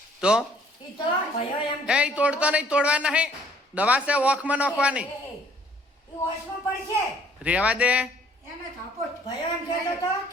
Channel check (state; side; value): normal; both; correlation 0.59